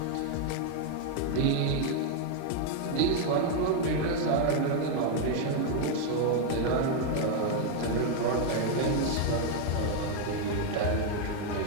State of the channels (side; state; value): both; different; correlation 0.00